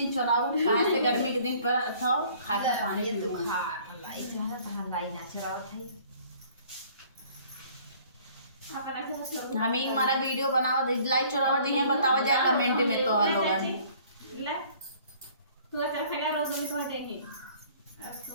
चुराऊ काहे से गर्मी के दिन पर था खाजा पानी ये तो खा अपन लाई जरा तो लाई ना चुरावत है हम ही हमारा वीडियो बनावा दे लाई चुरावा दी है बतावा जा कमेंट में तो लोग ले तू चल फैला रोज में तो देंगे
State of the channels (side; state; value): both; inverted; correlation -0.55